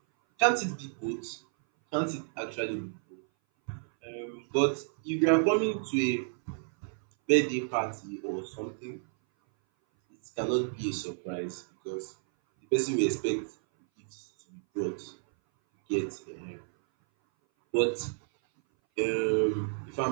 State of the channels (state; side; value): silent; left; 57 dB below the other